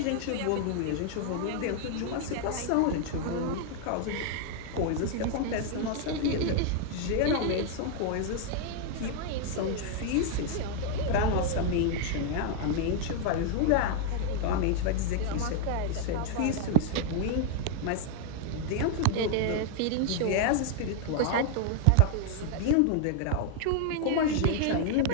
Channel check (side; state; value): both; different; correlation 0.00